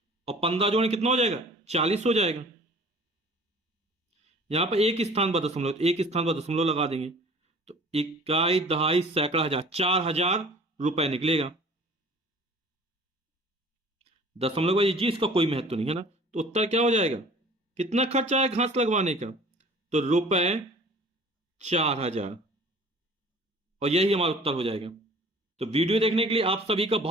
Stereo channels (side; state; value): both; normal; correlation 0.48